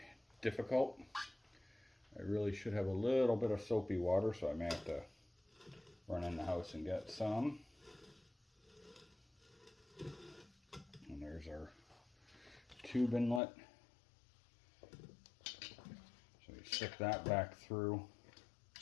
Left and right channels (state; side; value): drops out; right; at 13.4 s